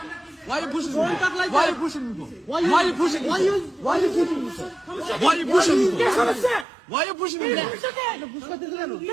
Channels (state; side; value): drops out; left; at 6.7 s